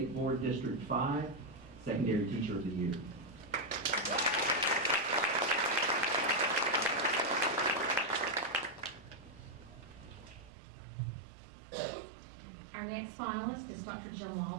Board District 5, Secondary Teacher of the Year. Our next finalist is Dr. Jim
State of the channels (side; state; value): left; drops out; at 10.5 s